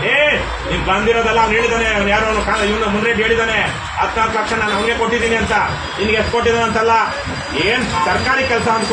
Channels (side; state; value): both; identical; correlation 1.00